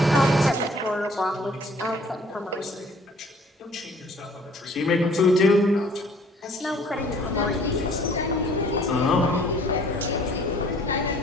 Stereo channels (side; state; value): both; normal; correlation 0.56